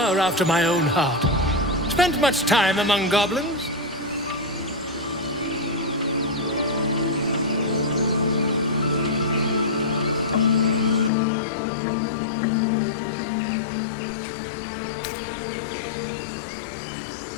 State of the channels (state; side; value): drops out; right; at 11.1 s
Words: after my own heart. Spent much time among goblins?